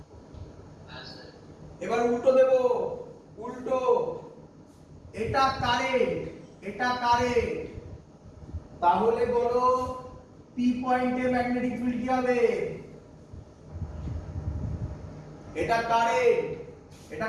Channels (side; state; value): both; identical; correlation 1.00